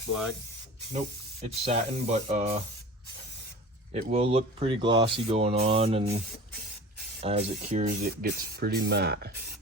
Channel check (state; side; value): normal; both; correlation 0.38